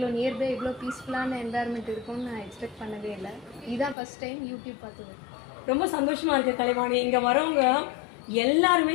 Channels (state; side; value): drops out; right; at 4.0 s